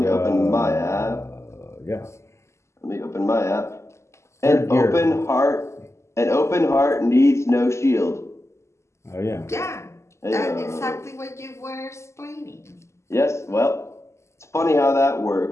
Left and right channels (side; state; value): right; late; 0.13 ms